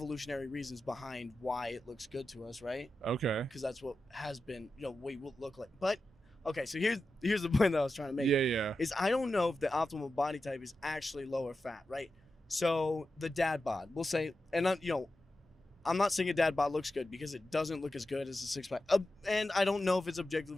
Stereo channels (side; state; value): both; normal; correlation 0.91